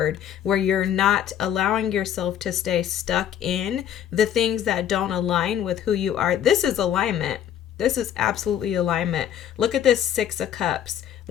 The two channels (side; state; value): right; quieter; 10.0 dB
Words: where you're not allowing yourself to stay stuck in the things that don't align with who you are. This is alignment. This is absolutely alignment. Look at this Six of Cups